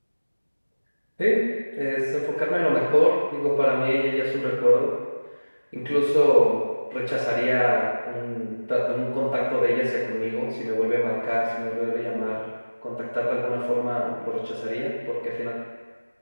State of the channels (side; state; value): both; inverted; correlation -1.00